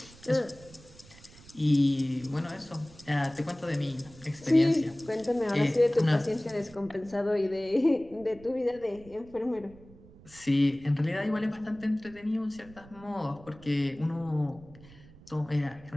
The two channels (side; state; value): right; noise; rumble, 22 dB below the sound